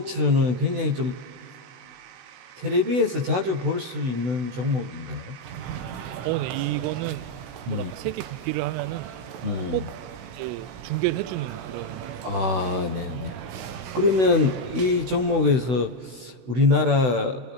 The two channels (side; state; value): left; late; 16 ms